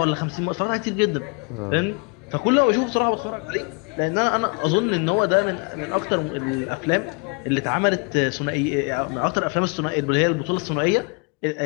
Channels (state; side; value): quieter; right; 32.7 dB